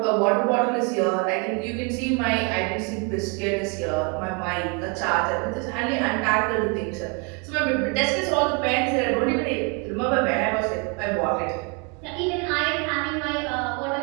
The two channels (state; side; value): quieter; left; 33.5 dB